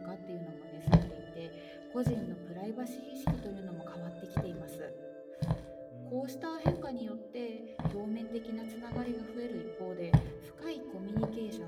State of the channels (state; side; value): identical; both; correlation 1.00